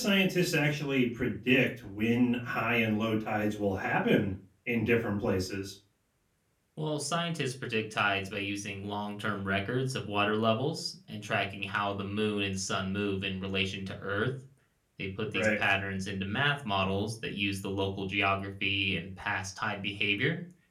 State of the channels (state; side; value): identical; both; correlation 1.00